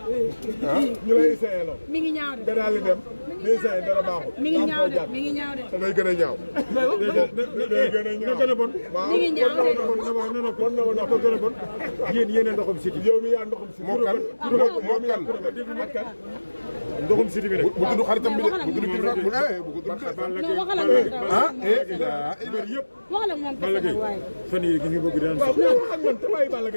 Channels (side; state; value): both; inverted; correlation -1.00